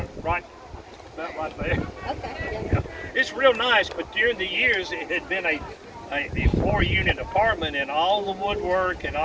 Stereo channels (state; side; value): identical; both; correlation 1.00